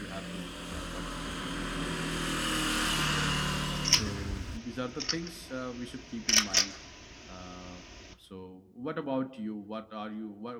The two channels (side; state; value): both; identical; correlation 1.00